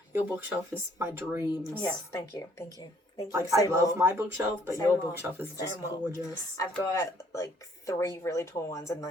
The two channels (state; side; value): normal; both; correlation 0.63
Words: Your bookshelf is my dreams. Yes, thank you. Like, Say I love more. my bookshelf, but Say your more. bookshelf is Say just more. gorgeous. I've got like 3 really tall ones and